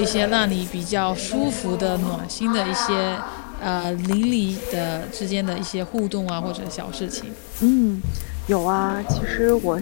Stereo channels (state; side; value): silent; right; digital silence